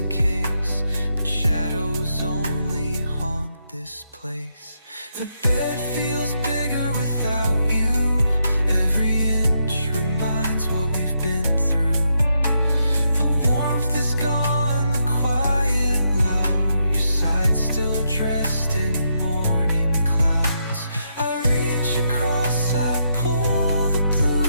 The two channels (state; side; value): inverted; both; correlation -0.80